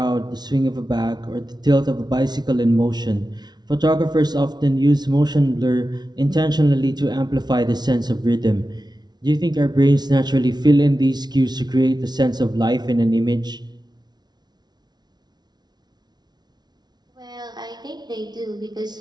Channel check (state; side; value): late; left; 0.20 ms